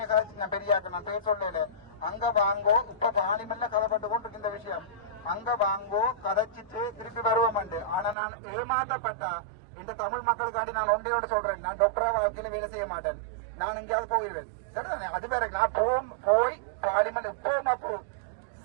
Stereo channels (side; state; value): left; drops out; at 8.2 s